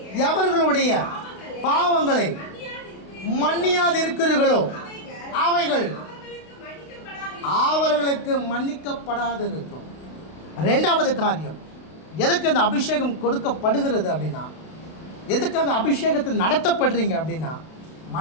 எவர்களுடைய பாவங்களை மன்னியாதிருக்கிறீர்களோ அவைகள் அவர்களுக்கு மன்னிக்கப்படாதிருக்கும். 2வது காரியம், எதுக்கு அந்த அபிஷேகம் கொடுக்கப்படுகிறது அப்படின்னா, எதுக்காக அபிஷேகத்தை நடத்தப்படுறீங்க அப்படின்னா,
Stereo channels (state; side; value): late; right; 32 ms